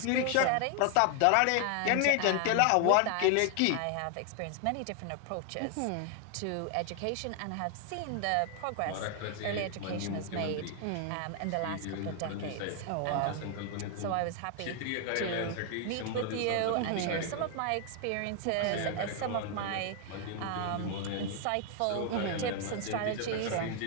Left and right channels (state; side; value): different; both; correlation 0.00